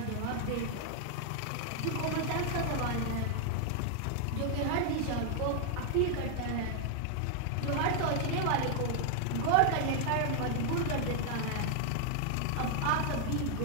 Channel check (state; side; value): different; both; correlation 0.00